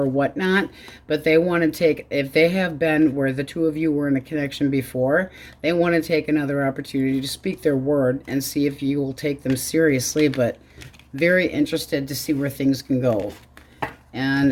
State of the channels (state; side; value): identical; both; correlation 1.00